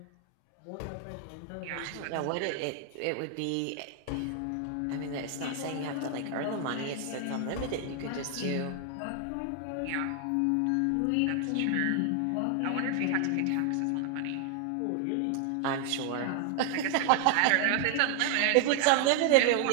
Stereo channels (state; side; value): different; both; correlation 0.00